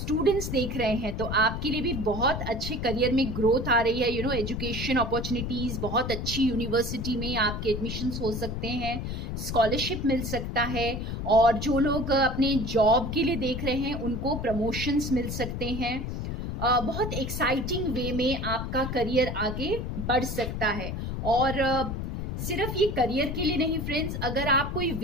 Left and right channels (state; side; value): noise; left; rumble, 4 dB below the sound